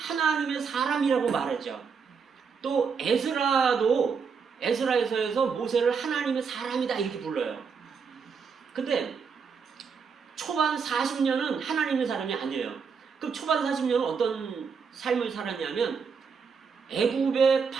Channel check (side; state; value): left; quieter; 5.9 dB